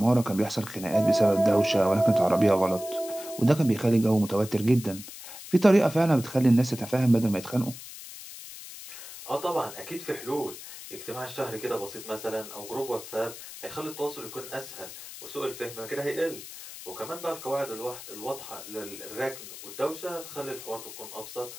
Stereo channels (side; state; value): left; noise; hiss, 13 dB below the sound